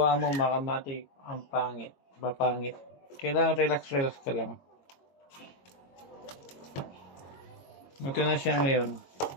mo mga kamatik, ang pangit, mapangit. Kailangan relax ka lang. Ito na siya ngayon.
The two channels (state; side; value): late; right; 22 ms